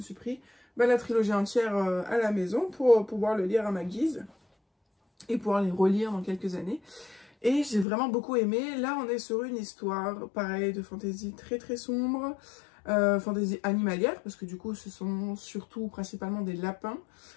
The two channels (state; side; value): drops out; right; at 7.9 s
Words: pris la trilogie entière à la maison pour pouvoir le lire à ma guise, et pouvoir les relire dans quelques années. Et j'ai vraiment beaucoup aimé. Là, on est sur une histoire, pareil, de fantasy très très sombre, fantasy animalière, parce que du coup, ce sont surtout principalement des lapins.